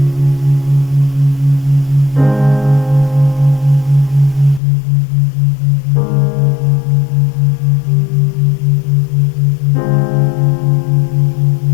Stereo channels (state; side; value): drops out; right; at 4.6 s